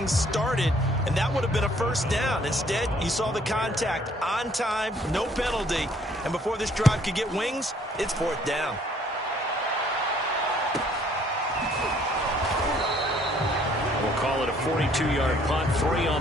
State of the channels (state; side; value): normal; both; correlation 0.62